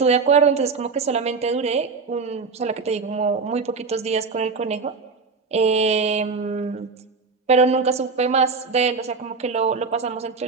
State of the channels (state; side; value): quieter; left; 4.6 dB